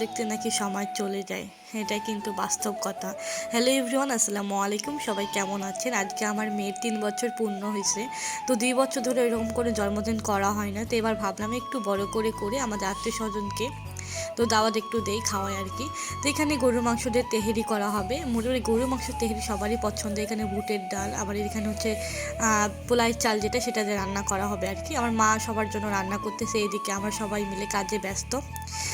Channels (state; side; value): identical; both; correlation 1.00